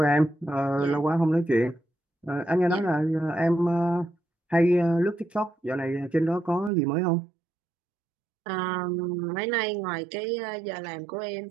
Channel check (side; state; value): left; drops out; at 6.7 s